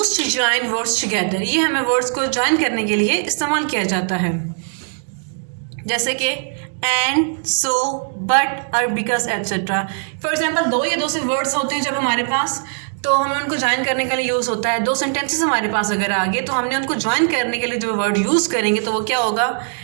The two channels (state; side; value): silent; left; digital silence